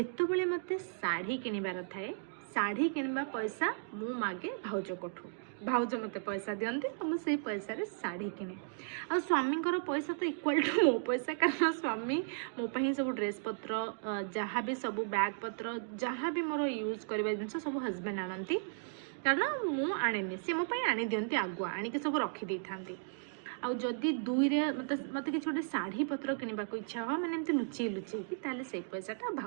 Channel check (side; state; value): left; silent; digital silence